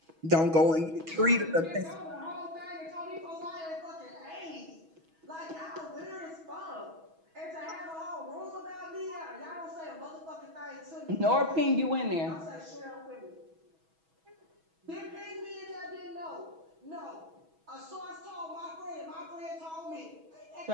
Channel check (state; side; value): late; left; 6.2 ms